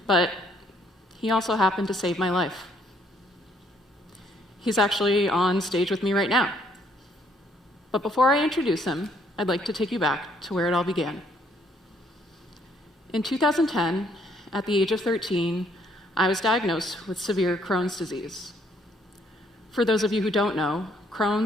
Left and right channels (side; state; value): both; normal; correlation 0.67